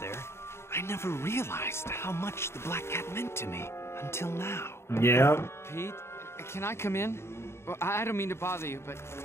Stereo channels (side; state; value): right; late; 0.12 ms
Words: I never realized how much the Black Cat meant to me until now. Yeah. Pete, can I come in? Well, I don't mean to bother you, but,